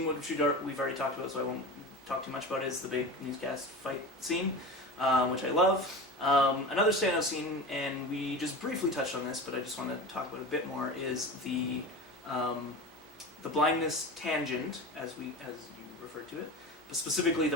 which we've already talked about, so I won't talk too much about it, is the big newscast fight scene, which I love. Another standout scene, and we just briefly touched on this, but I just want to talk about it a bit more, is the blindness tangent, as you referred to it, but specifically the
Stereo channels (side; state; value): both; normal; correlation 0.30